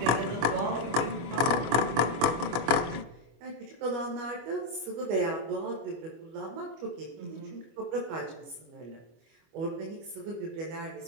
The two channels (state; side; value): late; left; 25 ms